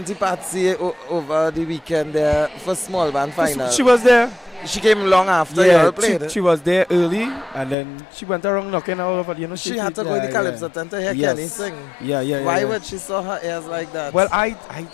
Patsy over the weekend there for small band final. She was there. She came long after you all played. She was there early, and then she went around knocking all over. You know, she had to go in the Calypso tent to hear Kenny sing. Why would she saw her ears like that? Well, I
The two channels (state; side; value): drops out; right; at 7.8 s